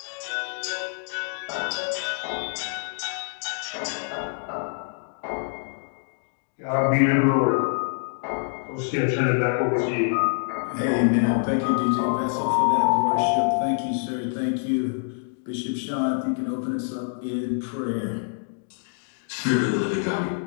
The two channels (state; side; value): silent; right; digital silence